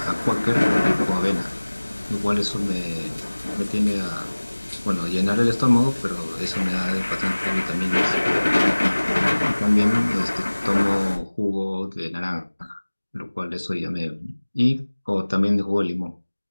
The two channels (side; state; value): both; inverted; correlation -1.00